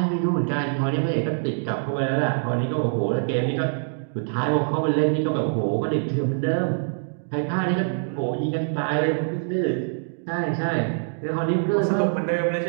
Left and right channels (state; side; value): silent; left; digital silence